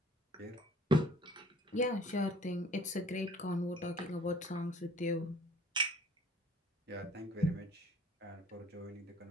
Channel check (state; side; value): normal; both; correlation 0.53